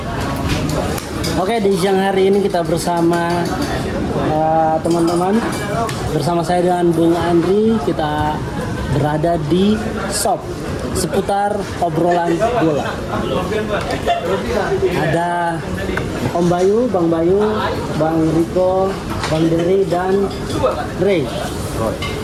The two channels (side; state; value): both; identical; correlation 1.00